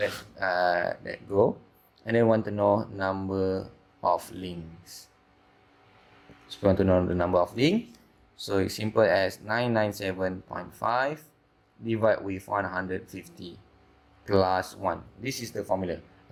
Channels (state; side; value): identical; both; correlation 1.00